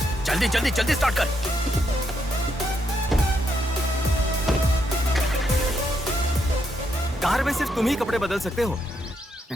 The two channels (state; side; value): normal; both; correlation 0.78